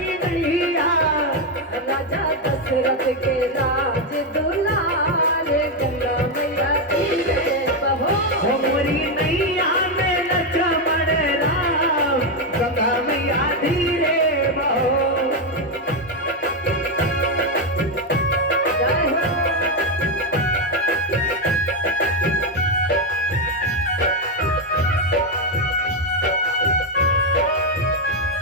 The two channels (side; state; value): both; normal; correlation 0.06